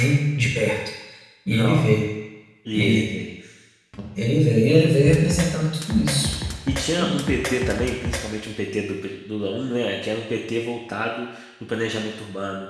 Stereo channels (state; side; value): identical; both; correlation 1.00